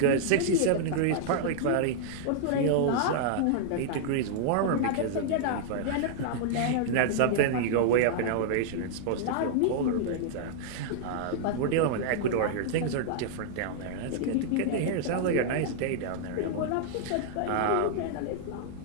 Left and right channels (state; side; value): different; both; correlation -0.01